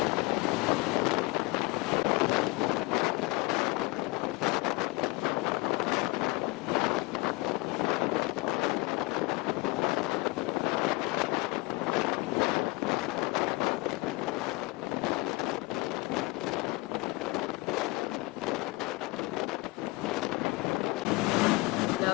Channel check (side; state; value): right; quieter; 23.4 dB